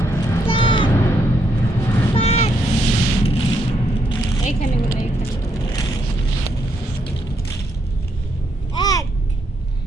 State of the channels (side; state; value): both; normal; correlation 0.76